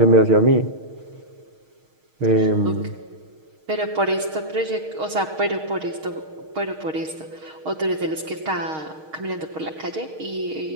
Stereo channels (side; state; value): left; late; 6.4 ms